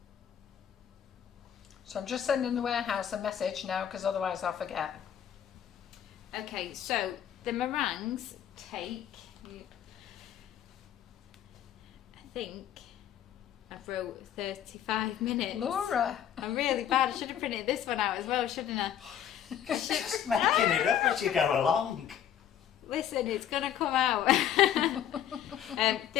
So I'm just sending the warehouse a message now, because otherwise I'll forget. Okay, so the meringues take, I think I wrote 35 minutes. Laura! I'm really bad. I should have printed this one out as well, shouldn't I? Just making it up as you go along. Listen, it's going to come out.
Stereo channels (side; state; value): right; quieter; 10.0 dB